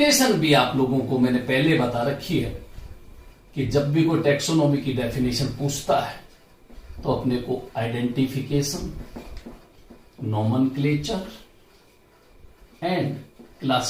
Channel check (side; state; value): both; identical; correlation 1.00